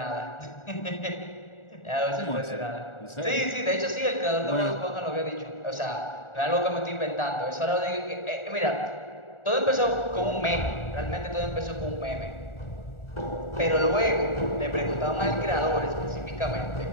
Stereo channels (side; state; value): right; late; 1.4 ms